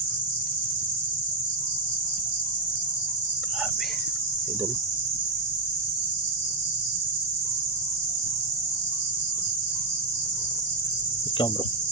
Grabe idol. Ikaw bro,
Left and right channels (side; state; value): left; quieter; 3.1 dB